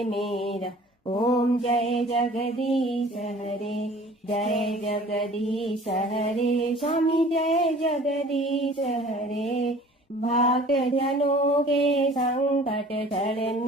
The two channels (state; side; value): normal; both; correlation 0.48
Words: मेरा। ओम जय जगदीश हरे, जय जगदीश हरे, स्वामी जय जगदीश हरे, भक्त जनों के संकट क्षण